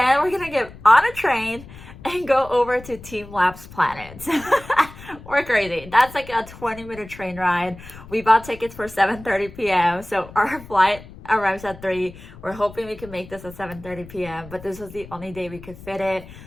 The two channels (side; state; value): left; noise; rumble, 17 dB below the sound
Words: we're gonna get on a train and go over to Team Labs Planet. We're crazy. That's like a 20-minute train ride. We bought tickets for 7:30 p.m. So our flight arrives at 3. We're hoping we can make this at 7:30 p.m. But this was the only day we could fit it.